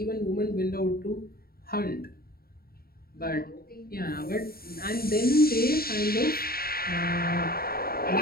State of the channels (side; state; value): right; late; 0.44 ms